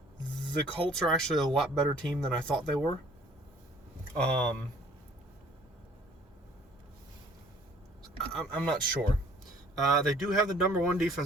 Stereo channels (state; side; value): normal; both; correlation 0.56